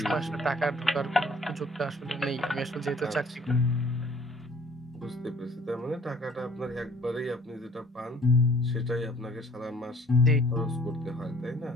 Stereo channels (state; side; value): normal; both; correlation 0.54